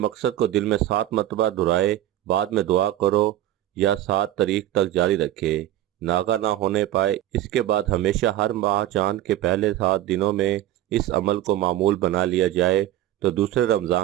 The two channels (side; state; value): left; quieter; 13.5 dB